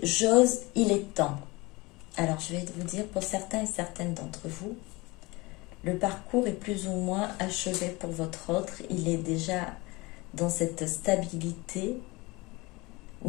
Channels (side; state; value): right; quieter; 23.6 dB